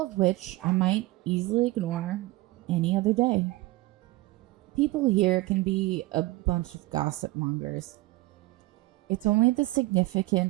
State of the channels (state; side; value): quieter; left; 20.1 dB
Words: of which I might easily ignore any other day. People here can be a bunch of gossip mongers. It's only the